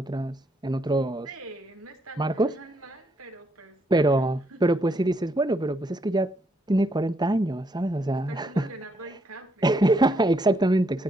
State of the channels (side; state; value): both; normal; correlation 0.74